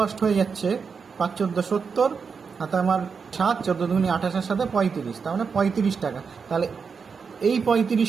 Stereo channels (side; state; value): left; quieter; 5.7 dB